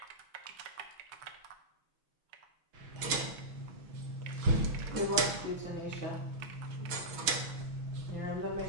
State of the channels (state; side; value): late; left; 6.2 ms